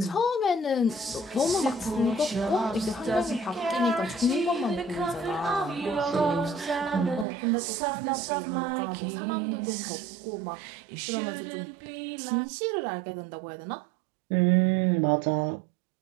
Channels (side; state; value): left; drops out; at 7.2 s